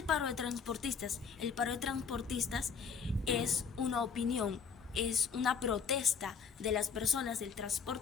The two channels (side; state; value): right; quieter; 6.1 dB